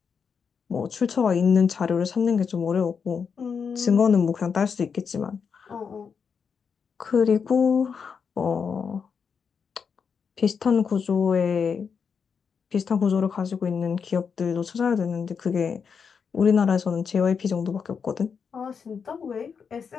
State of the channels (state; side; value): quieter; right; 6.2 dB